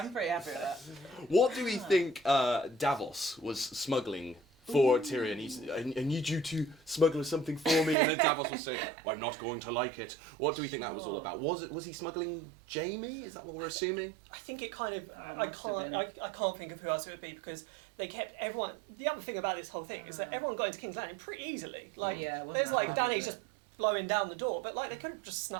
pretty happy with that. What do we think Davos was smuggling for Tyrion? I need you to smuggle something for me, and then Davos was saying, well, I'm not going to like it. What do we think that was all about? Was he smuggling Jaime? Is that what we're assuming? I think it kind of. I can't think of who else it would be, because they kept everyone. The other thing about this whole thing is that everyone got into King's Landing pretty easily. Like there's like Dany just blowing down the door, but like they could have just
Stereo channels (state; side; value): drops out; left; at 8.0 s